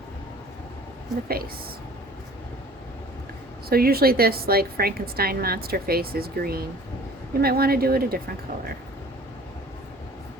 the face. So usually this, like Frankenstein monster face, is green. You might want to do it a different color,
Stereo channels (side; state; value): both; normal; correlation 0.48